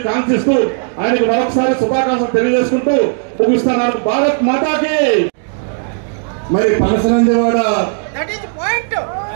కాంక్షిస్తూ ఆయనకు మరొకసారి శుభాకాంక్షలు తెలియజేసుకుంటూ ముగిస్తున్నాను. భారత్ మాతాకి. మరి పనసనందివాడ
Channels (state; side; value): silent; left; 60 dB below the other